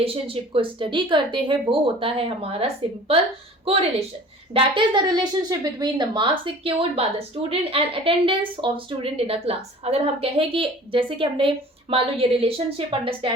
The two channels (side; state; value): both; normal; correlation 0.45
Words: को स्टडी करते हैं वो होता है हमारा simple correlation. That is the relationship between the marks secured by the student and attendance of student in a class. अगर हम कहें कि जैसे कि हमने मान लो ये रिलेशनशिप